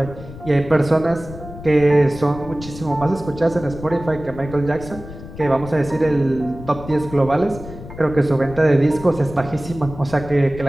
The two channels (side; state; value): left; noise; rumble, 14 dB below the sound